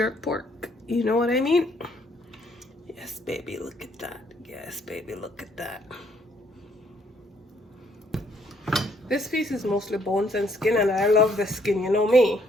pork. You know what I mean? Yes, baby, look at that. Yes, baby, look at that. This piece is mostly bones and skin, and I love the skin, you know me.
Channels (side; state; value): both; normal; correlation 0.67